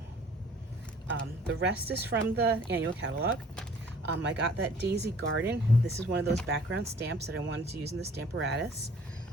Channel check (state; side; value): normal; both; correlation 0.54